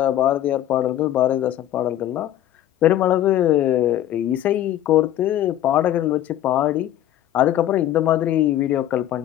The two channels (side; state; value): right; quieter; 12.4 dB